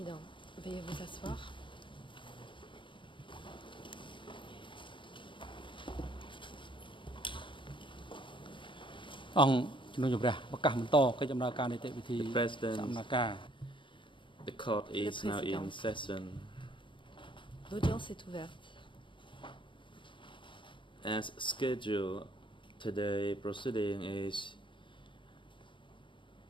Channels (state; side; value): late; right; 0.24 ms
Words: veuillez vous asseoir. The President, the court is now in session. L'audience est ouverte. As scheduled, today's proceeding is